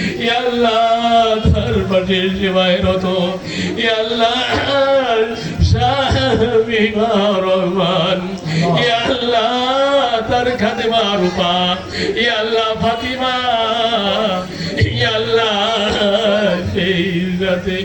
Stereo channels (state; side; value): identical; both; correlation 1.00